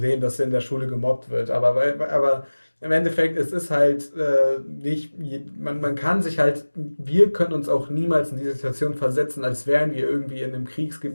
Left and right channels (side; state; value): both; inverted; correlation -1.00